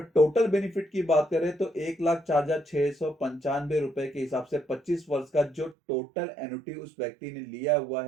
टोटल बेनिफिट की बात करें तो 1,04,695 रुपए के हिसाब से 25 वर्ष का जो टोटल एन्युटी उस व्यक्ति ने लिया हुआ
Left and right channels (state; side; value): drops out; left; at 5.8 s